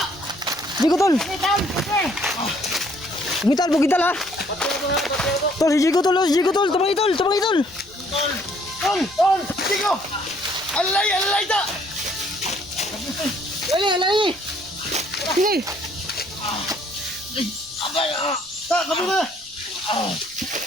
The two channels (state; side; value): noise; right; rumble, 27 dB below the sound